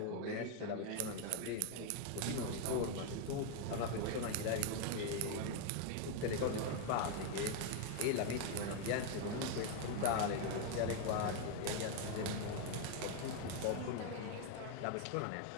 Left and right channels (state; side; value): different; both; correlation 0.01